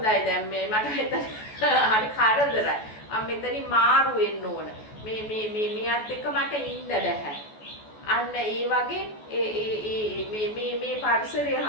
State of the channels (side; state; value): right; late; 14 ms